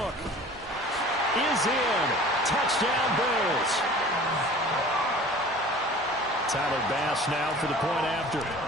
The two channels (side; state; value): both; normal; correlation 0.44